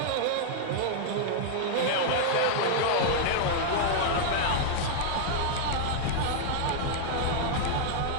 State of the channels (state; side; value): different; both; correlation -0.01